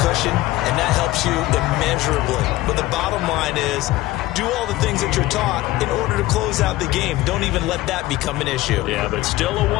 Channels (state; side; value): quieter; right; 17.4 dB